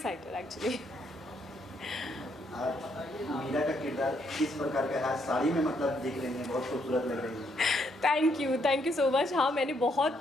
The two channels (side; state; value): both; normal; correlation 0.73